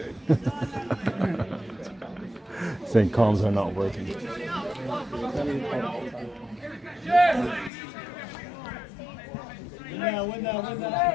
Saying comms are not working. Win now.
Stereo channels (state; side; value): drops out; right; at 7.7 s